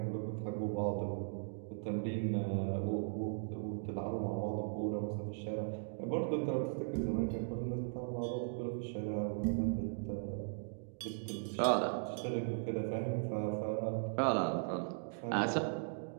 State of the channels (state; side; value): silent; left; digital silence